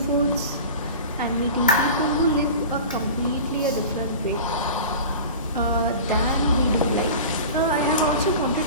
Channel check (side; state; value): both; inverted; correlation -0.35